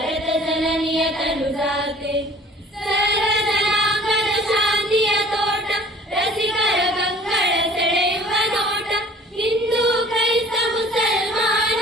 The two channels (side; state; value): both; normal; correlation 0.51